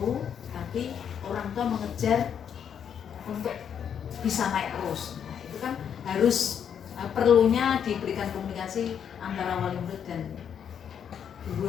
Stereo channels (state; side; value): quieter; right; 8.2 dB